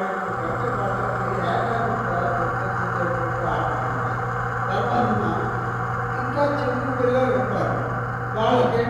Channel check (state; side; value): identical; both; correlation 1.00